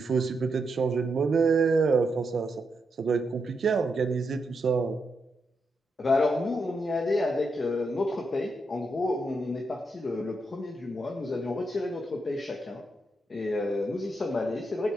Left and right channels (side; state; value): both; normal; correlation 0.83